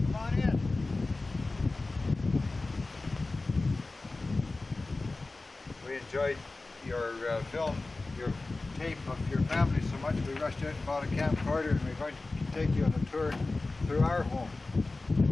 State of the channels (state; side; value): quieter; right; 3.3 dB